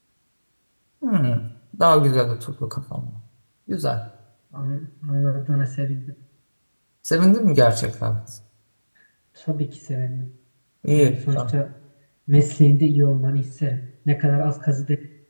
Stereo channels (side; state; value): both; inverted; correlation -1.00